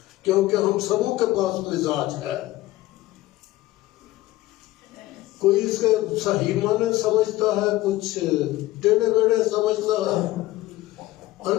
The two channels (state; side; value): quieter; right; 17.3 dB